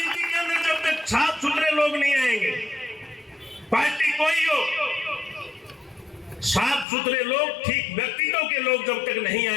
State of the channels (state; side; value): drops out; right; at 6.9 s